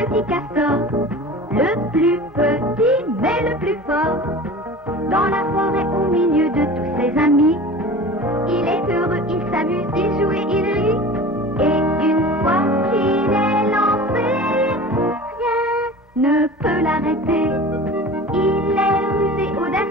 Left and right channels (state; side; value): normal; both; correlation 0.37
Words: castor, le plus petit mais le plus fort. Dans la forêt au milieu de tous ses amis, il est heureux, il s'amuse, il joue et il rit. Et une fois qu'il est lancé, rien ne peut l'arrêter. Il est rusé,